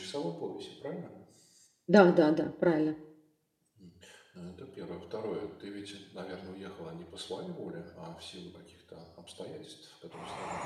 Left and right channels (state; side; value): identical; both; correlation 1.00